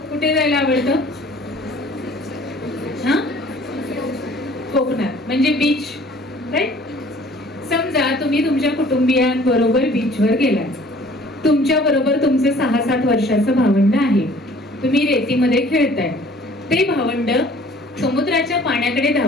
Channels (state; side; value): normal; both; correlation 0.53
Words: कुठे जायला आवडतं? हा, कोकणात म्हणजे बीच, राईट? समजा तुम्ही तुमच्या कुटुंबियांबरोबर बीचवर गेलाय, तुमच्या बरोबर तुमचं 6-7 वर्षाचं भावंड आहे, तुम्ही रेतीमध्ये खेळताय, ते भावंड समुद्राच्या पाण्याकडे